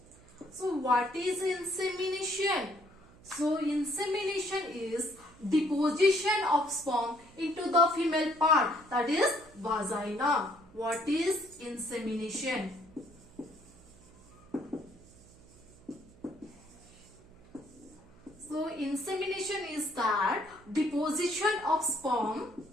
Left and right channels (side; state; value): right; noise; hum, 25 dB below the sound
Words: So what is insemination? So insemination is deposition of sperm into the female part, that is vagina. What is insemination? So insemination is that deposition of sperm